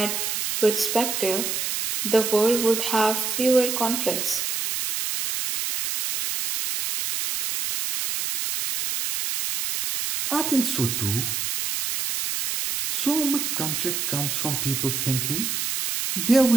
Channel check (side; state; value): right; noise; hiss, 1 dB below the sound